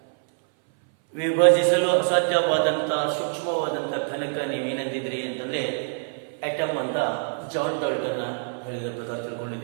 ವಿಭಜಿಸಲು ಅಸಾಧ್ಯವಾದಂಥ ಸೂಕ್ಷ್ಮವಾದಂಥ ಘನಕ ನೀವೇನಂದಿದ್ರಿ ಅಂತಂದರೆ atom ಅಂತ John Dalton ಹೇಳಿದ ಪ್ರಕಾರ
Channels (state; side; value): silent; left; 59 dB below the other